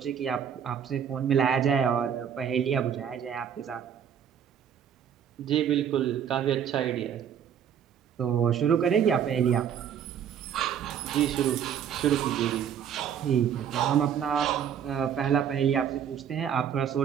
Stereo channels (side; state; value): left; quieter; 8.6 dB